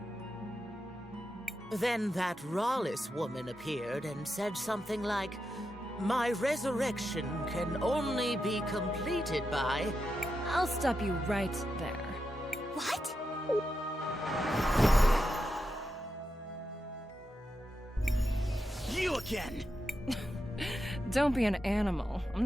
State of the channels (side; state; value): both; normal; correlation 0.87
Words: Then that Rawless woman appeared and said something like, "My resurrection can only be completed by..." I'll stop you right there. What? You again! Don't be an animal. I'm